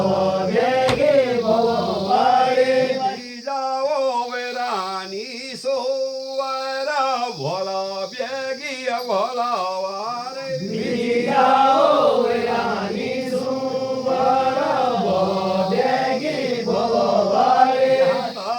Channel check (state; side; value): identical; both; correlation 1.00